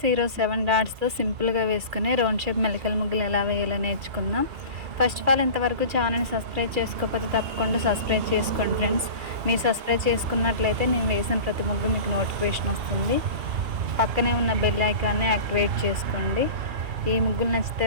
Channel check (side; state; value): left; late; 2.6 ms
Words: ఈరోజు 7 డాట్స్తో సింపుల్గా వేసుకుని రౌండ్ షేప్ మెలికల ముగ్గులు ఎలా వేయాలో నేర్చుకుందాం. ఫస్ట్ ఆఫ్ ఆల్ ఇంతవరకు ఛానల్ని సబ్స్క్రైబ్ చేసుకోకపోతే తప్పకుండా సబ్స్క్రైబ్ చేసుకోండి ఫ్రెండ్స్. మీరు సబ్స్క్రైబ్ చేసుకున్నట్లయితే నేను వేసిన ప్రతి ముగ్గు మీకు నోటిఫికేషన్ వస్తుంది. పక్కనే ఉన్న బెల్ ఐకాన్ని యాక్టివేట్ చేసుకోండి. ఈ ముగ్గులు నచ్చితే